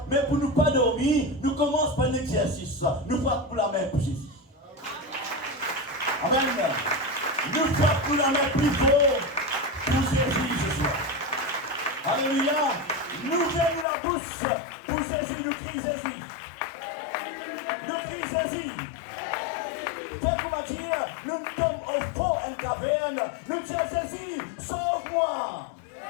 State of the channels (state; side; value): drops out; right; at 13.9 s